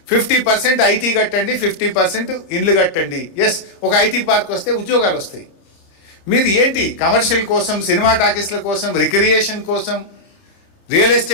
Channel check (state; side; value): late; right; 30 ms